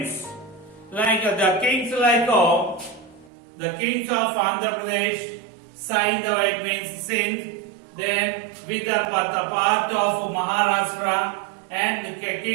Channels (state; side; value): drops out; left; at 3.3 s